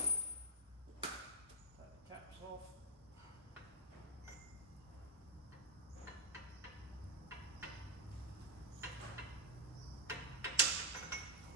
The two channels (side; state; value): both; normal; correlation -0.13